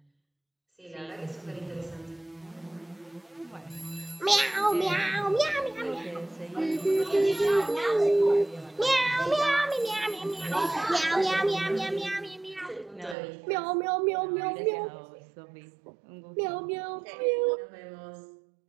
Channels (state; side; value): drops out; left; at 13.2 s